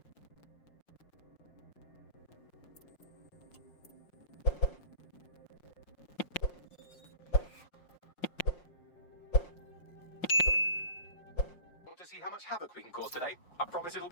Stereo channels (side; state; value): right; late; 5.6 ms